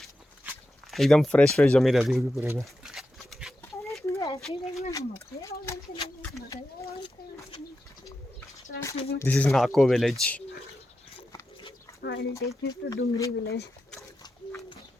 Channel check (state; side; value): normal; both; correlation 0.89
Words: एकदम फ्रेश जमी रहती होगी पूरे में। This is Nako village. I'll take you to Dungri village.